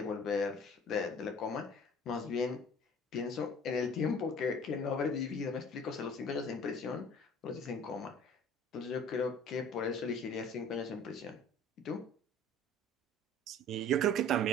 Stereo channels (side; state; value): both; normal; correlation 0.47